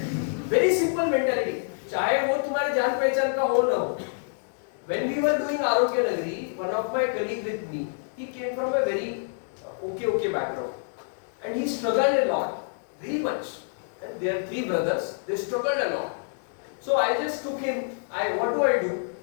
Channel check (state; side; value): silent; right; digital silence